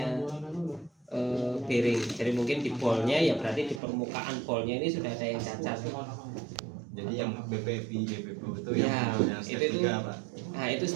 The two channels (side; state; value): left; drops out; at 3.8 s